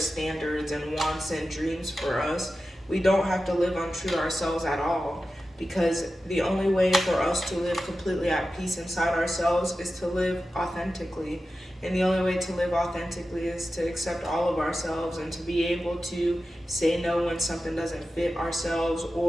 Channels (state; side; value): normal; both; correlation 0.93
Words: and wants and dreams for us. We don't have to live untrue to ourselves at all, because the only way for us to live completely at peace inside ourselves is to live authentically. And the only way to live authentically is to accept all of ourselves and to be able to say no when something doesn't fit ourselves,